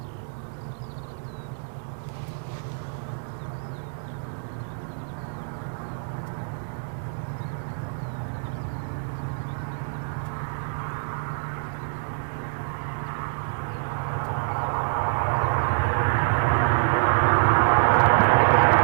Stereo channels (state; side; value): silent; left; digital silence